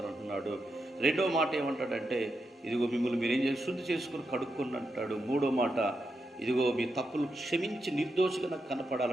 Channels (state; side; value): normal; both; correlation 0.86